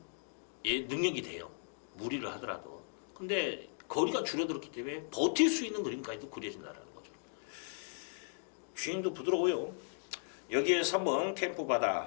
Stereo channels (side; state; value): right; silent; digital silence